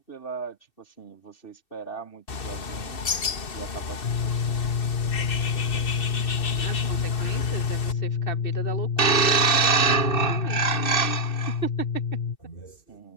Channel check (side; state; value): right; late; 2.7 ms